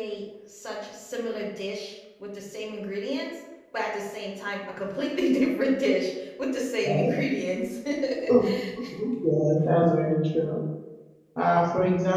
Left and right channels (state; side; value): identical; both; correlation 1.00